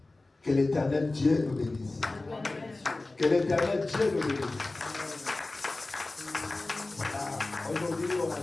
Que l'Éternel Dieu nous bénisse. Let God bless you. Que l'Éternel Dieu nous bénisse. Aujourd'hui, on a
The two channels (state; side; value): quieter; right; 3.1 dB